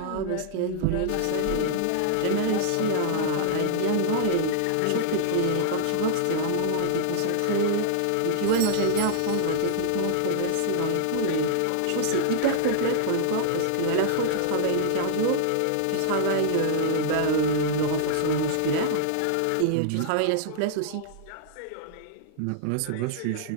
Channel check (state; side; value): different; both; correlation -0.01